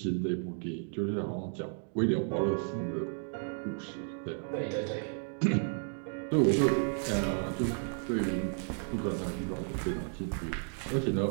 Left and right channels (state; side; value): silent; left; 56 dB below the other